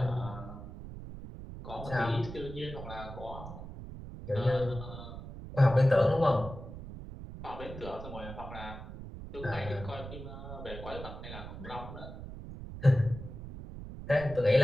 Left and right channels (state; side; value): noise; right; rumble, 11 dB below the sound